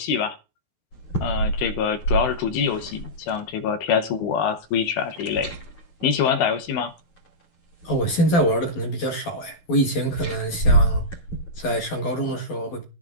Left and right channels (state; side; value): late; right; 12 ms